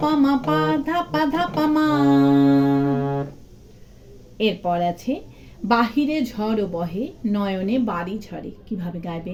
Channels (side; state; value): both; identical; correlation 1.00